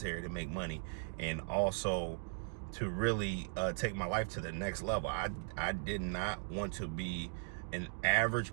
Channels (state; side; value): silent; left; digital silence